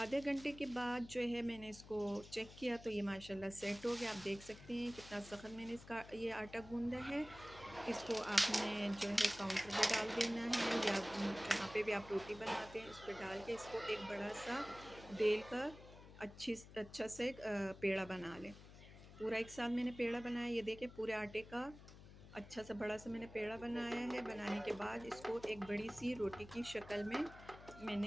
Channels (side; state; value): left; noise; hum, 17 dB below the sound